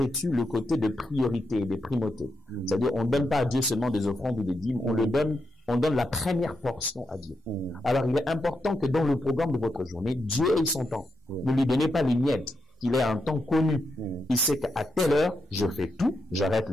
le côté de priorité et de primauté. C'est-à-dire, on ne donne pas à Dieu seulement des offrandes ou des dîmes, on donne la première portion à Dieu. Alors, il est important que dans le programme de votre journée, Dieu ait son temps. Ne lui donnez pas les miettes, qu'il ait un temps connu. Il sait qu'à telle heure, je fais tout, j'arrête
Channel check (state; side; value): normal; both; correlation 0.83